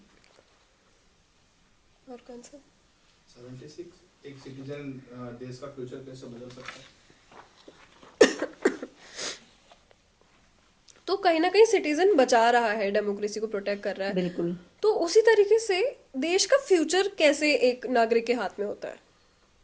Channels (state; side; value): identical; both; correlation 1.00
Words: और कौन सा? 76 एक सिटीजन देश का फ्यूचर कैसे बदल सकता है? तो कहीं ना कहीं सिटीजन बचा रहा है, डेमोक्रेसी को प्रोटेक्ट कर रहा है, बिल्कुल। तो उसी तरीके से देश का फ्यूचर कैसे एक नागरिक के हाथ में होता है?